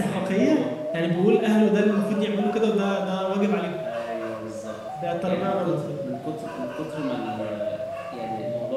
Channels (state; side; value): identical; both; correlation 1.00